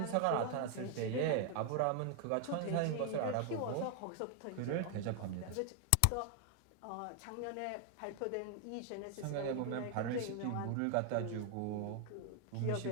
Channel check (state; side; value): different; both; correlation 0.00